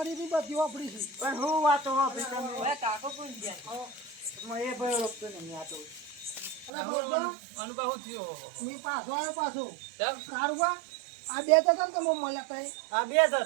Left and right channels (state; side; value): drops out; left; at 6.7 s